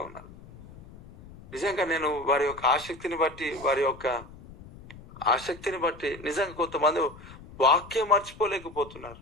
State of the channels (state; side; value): noise; left; rumble, 19 dB below the sound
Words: ఉన్నారు. నిజంగా నేను వారి యొక్క ఆసక్తిని బట్టి నిజంగా కొంతమంది వాక్యం మర్చిపోలేకపోతున్నారు.